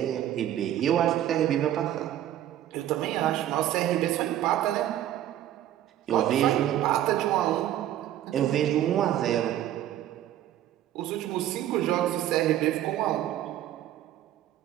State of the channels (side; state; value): left; quieter; 12.3 dB